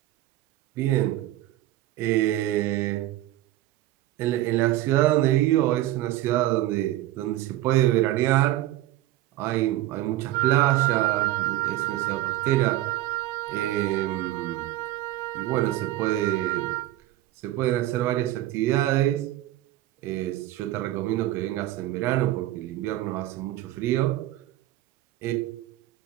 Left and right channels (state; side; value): quieter; left; 15.1 dB